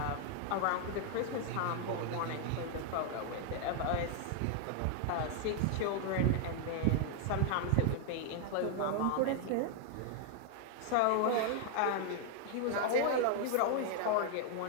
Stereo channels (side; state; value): both; different; correlation 0.00